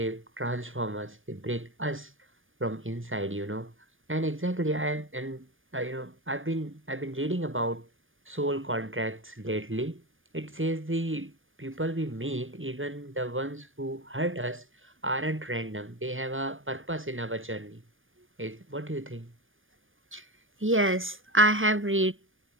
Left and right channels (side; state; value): left; late; 0.58 ms